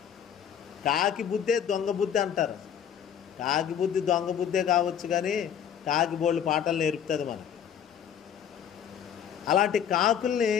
కాకి బుద్ధే దొంగ బుద్ధి అంటారు. కాకి బుద్ధి దొంగ బుద్ధే కావచ్చు, కానీ కాకి బోళ్ళు పాటలు నేర్పుతుంది మనకి. అలాంటి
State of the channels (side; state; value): right; quieter; 8.7 dB